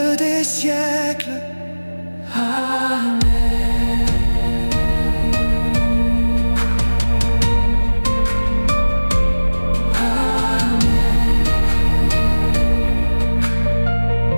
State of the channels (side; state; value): both; inverted; correlation -1.00